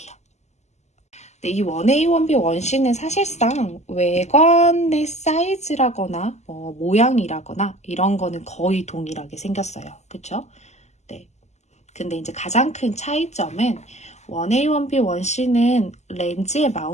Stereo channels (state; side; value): late; right; 0.33 ms